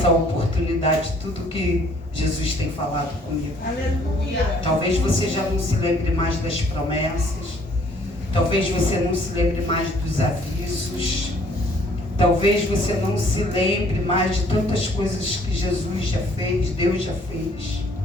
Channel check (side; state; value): both; normal; correlation 0.60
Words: oportunidade tudo que Jesus tem falado comigo. Aleluia! Talvez você já não se lembre mais das promessas, talvez você não se lembre mais dos avisos, talvez você não se lembre mais de tantas coisas que Jesus já fez, Deus já fez.